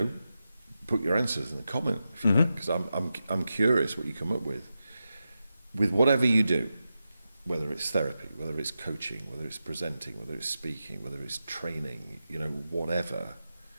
put your answers in the comment if you like, because I'm curious what you come up with whatever you do, whether it's therapy, whether it's coaching, whether it's presenting, whether it's speaking, whether it's training, whatever.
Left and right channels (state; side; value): inverted; both; correlation -0.90